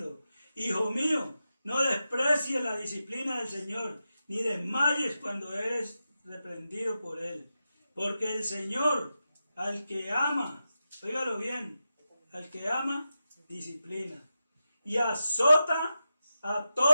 hijo mío, no desprecies la disciplina del Señor, ni desmayes cuando eres reprendido por Él. Porque el Señor, al que ama, óigalo bien, al que ama, disciplina. Y azota a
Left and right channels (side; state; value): both; inverted; correlation -0.90